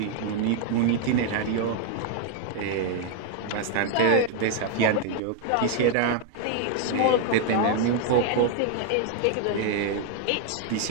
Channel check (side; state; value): both; different; correlation 0.00